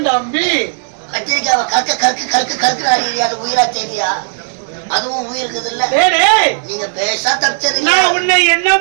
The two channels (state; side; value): silent; left; digital silence